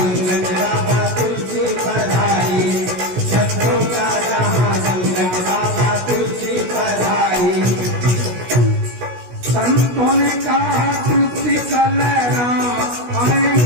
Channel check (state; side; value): late; left; 16 ms